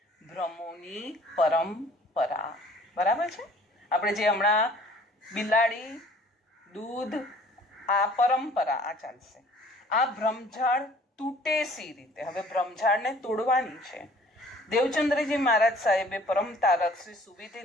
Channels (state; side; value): normal; both; correlation 0.53